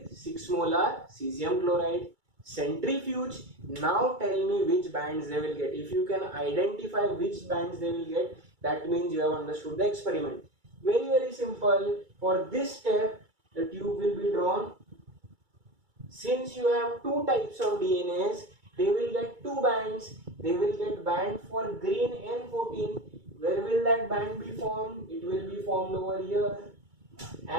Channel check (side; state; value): left; late; 2.3 ms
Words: 6 molar cesium chloride. Centrifuge. Now tell me which bands they will get. If you can identify which bands they will get, that means you have understood the experiment. Very simple. For this step, the tube will be drawn. Since you have 2 types of DNAs, they will get 2 bands. They will get band for green N14. Where will that band be formed? It will be formed over here.